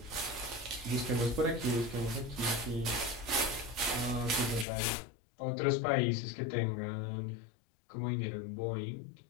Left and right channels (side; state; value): right; drops out; at 4.7 s